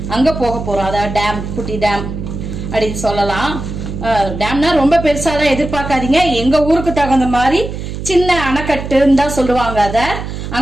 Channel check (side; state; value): right; noise; hum, 7 dB below the sound